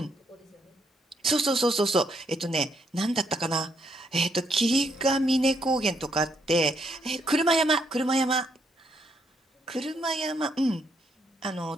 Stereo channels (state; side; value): normal; both; correlation 0.74